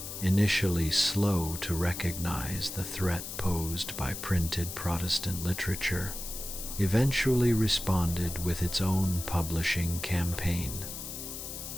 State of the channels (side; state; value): left; noise; hiss, 8 dB below the sound